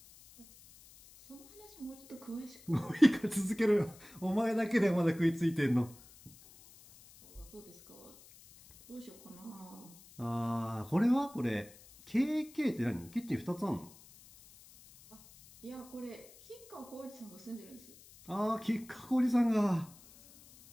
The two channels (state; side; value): noise; left; hiss, 22 dB below the sound